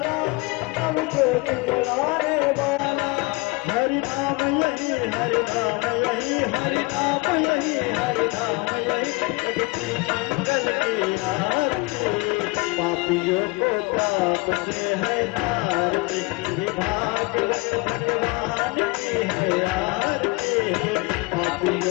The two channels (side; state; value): right; quieter; 25.5 dB